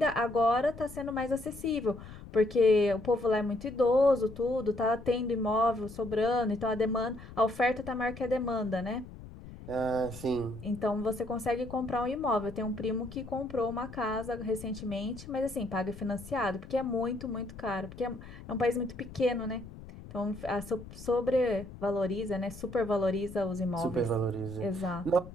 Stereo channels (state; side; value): noise; left; rumble, 15 dB below the sound